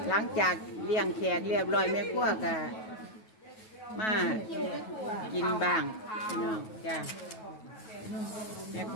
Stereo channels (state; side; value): late; right; 9.3 ms